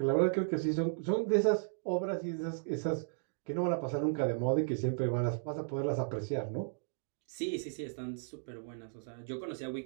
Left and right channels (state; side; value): silent; left; digital silence